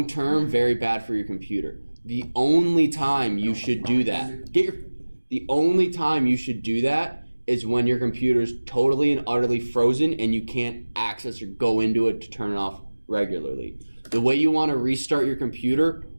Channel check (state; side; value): inverted; both; correlation -1.00